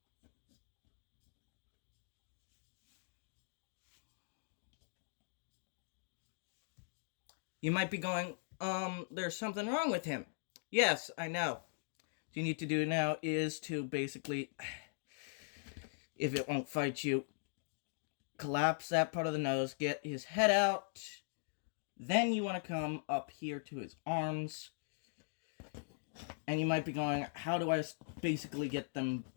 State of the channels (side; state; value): right; silent; digital silence